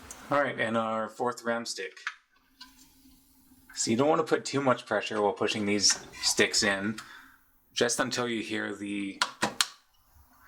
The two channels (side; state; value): both; identical; correlation 1.00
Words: Alright, and our fourth RAM stick. So you don't want to put too much pressure while pushing these sticks in, just until you hear the